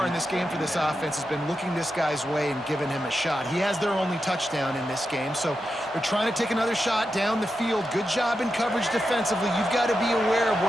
in this game for this offense has been looking this guy's way and giving him a shot. He has their only touchdown in this game, so they're trying to take another shot down the field. Good job in coverage defensively. You've got to be aware of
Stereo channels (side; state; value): both; normal; correlation 0.88